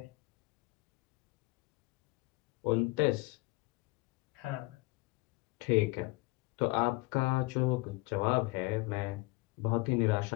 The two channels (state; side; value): quieter; right; 23.8 dB